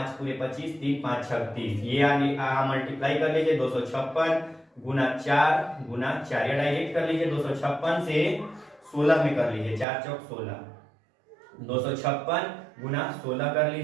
पूरे 25, 3 5 36, ये आगे मल्टीप्लाई कर लीजिए, 256 गुना 4 गुना 4, या डायरेक्ट कर लीजिए 256 से 16 में कर लीजिए, 4 चौक 16, 256 गुना 16 कर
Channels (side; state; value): left; drops out; at 9.9 s